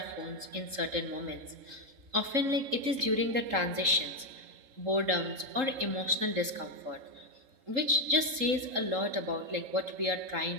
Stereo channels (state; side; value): late; left; 3.8 ms